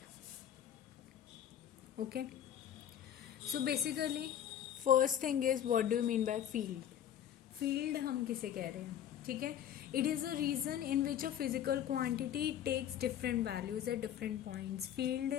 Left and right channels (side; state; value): right; quieter; 10.2 dB